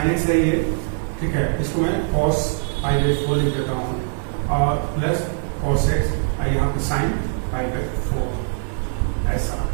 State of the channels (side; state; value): left; silent; digital silence